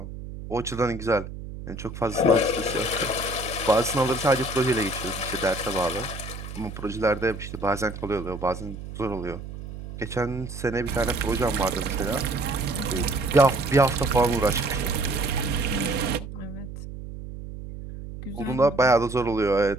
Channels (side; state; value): right; noise; hum, 10 dB below the sound